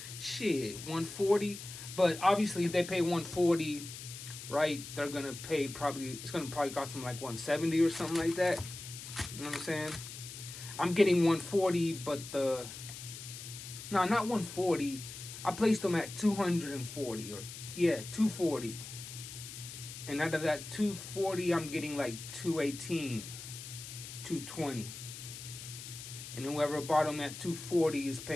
shit, 140. But obviously if they pay 140, right, they're going to pay it's going to probably cost them like 170 or something like that. You know what I'm saying? I'm getting 140, but no, not 140. I placed them at 240 or, yeah, 240. And out of that 240, I'm getting like 218, 220. And whoever bought them at 240 is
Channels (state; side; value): noise; left; hiss, 11 dB below the sound